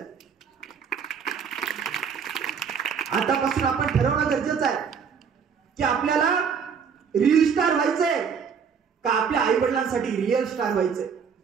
आतापासून आपण ठरवणं गरजेचं आहे की आपल्याला रील स्टार व्हायचंय का आपल्या आई वडिलांसाठी रिअल स्टार व्हायचंय.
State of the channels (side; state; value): left; quieter; 6.6 dB